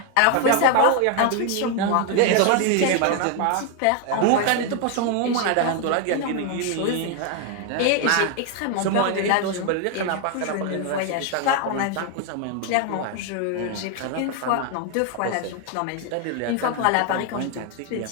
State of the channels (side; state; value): both; different; correlation 0.01